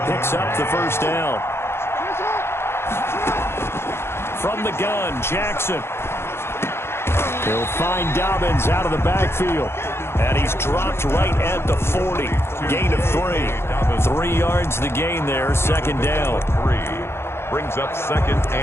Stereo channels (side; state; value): right; late; 0.12 ms